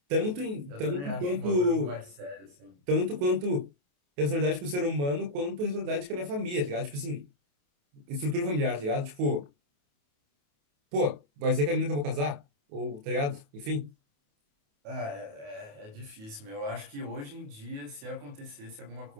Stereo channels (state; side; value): late; left; 28 ms